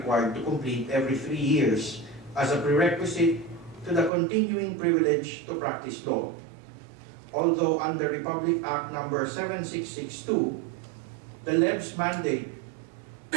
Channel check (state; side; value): drops out; left; at 4.1 s